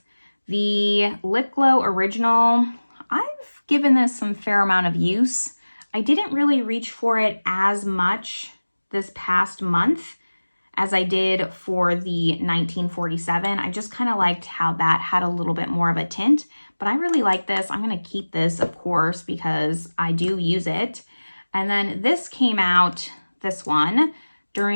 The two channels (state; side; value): inverted; both; correlation -1.00